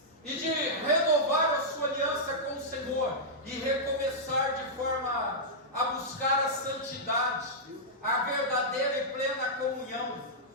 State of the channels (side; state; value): both; normal; correlation -0.10